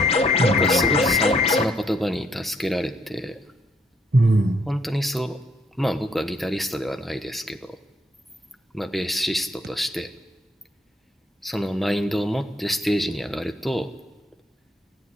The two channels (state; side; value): normal; both; correlation 0.69